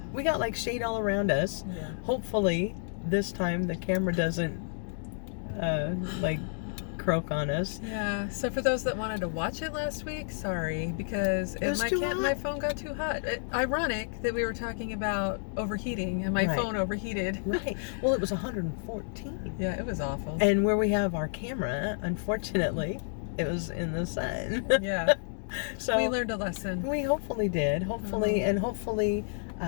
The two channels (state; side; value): silent; right; digital silence